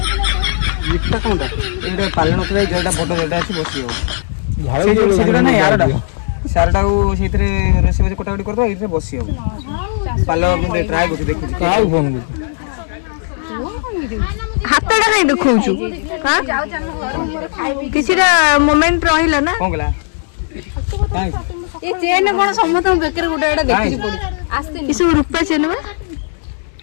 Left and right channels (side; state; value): right; silent; 69 dB below the other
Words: इटा कोनटा एटा पालन होतले जेटा बड जेटा अछि बसी हो झाड़ जो सेटा ना यारटा सारटा को सेतरे रेसे बजे कोटाकोटी करबो इथे बसी हो पालो मुंडे ट्राई करके देखु काउ फोन कर हातटा नै देखौछु हां किछिरा मोमेंट रहिला ना कोन गला ये चेन कोन समत बेकर गुडा एटा देखि पड़ी आस्ते किछु रुपा चेन में